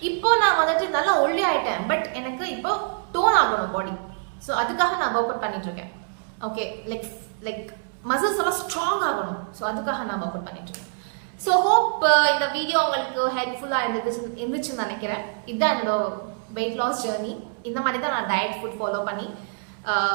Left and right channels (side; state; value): left; silent; 62 dB below the other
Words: இப்போ நான் வந்துட்டு நல்லா ஒல்லி ஆயிட்டேன். பட் எனக்கு இப்போ டோன் ஆகணும் பாடி. ஸோ அதுக்காக நான் ஒர்க் அவுட் பண்ணிட்டு இருக்கேன். ஓகே, லைக் மசில்ஸ் எல்லாம் ஸ்ட்ராங் ஆகணும். ஸோ அதுக்காக நான் ஒர்க் அவுட் பண்ணிட்டு இருக்கேன். ஸோ ஹோப் இந்த வீடியோ உங்களுக்கு ஹெல்ப்ஃபுல்லாக இருந்துச்சுன்னு நினைக்கிறேன். இதுதான் என்னோட வெயிட் லாஸ் ஜேர்னி. இந்த மாதிரி தான் நான் டயட் ஃபுட் ஃபாலோ பண்ணி